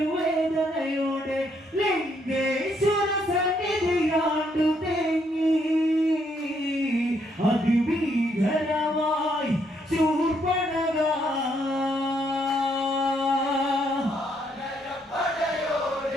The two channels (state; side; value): normal; both; correlation 0.73